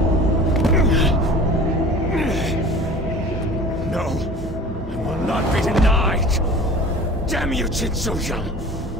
Damn you, Jin So-young!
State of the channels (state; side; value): normal; both; correlation 0.42